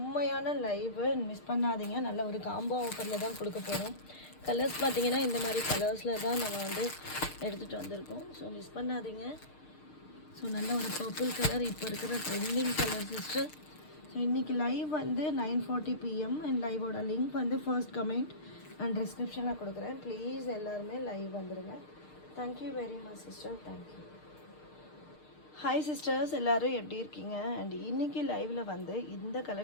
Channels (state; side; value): late; right; 6.6 ms